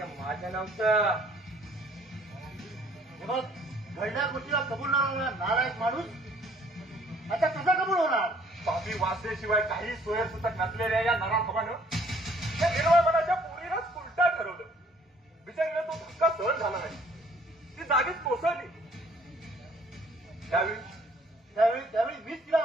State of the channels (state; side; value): normal; both; correlation 0.60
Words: माझं नव्हतं. मग घडल्या गोष्टीला कबूल न होणार नारायण माणूस आता कसा कबूल होणार? पापी वाचल्याशिवाय काही सोयरसुतक नसलेल्या या नराधमानं या निर्मळ मनाच्या पोरीलाच उलटा ठरवलं. बिचारीला तो धक्का सहन झाला नाही. ती जागीच कोसळली. त्यावेळी मीच तिला